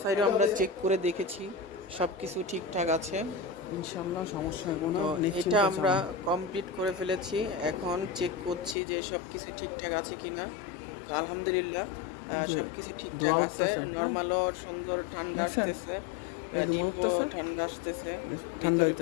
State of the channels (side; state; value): right; drops out; at 8.8 s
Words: সাইডে আমরা চেক করে দেখেছি, সব কিছু ঠিকঠাক আছে, ইনশাল্লাহ সমস্যা হবে না। এটা আমরা কমপ্লিট করে ফেলেছি। এখন চেক করছি যে সব কিছু ঠিকঠাক আছে কিনা। তো আলহামদুলিল্লাহ সব কিছু ঠিকঠাক আছে। নর্মালও সুন্দর ঠান্ডা আসতেছে, ডিপও ঠান্ডা আসতেছে,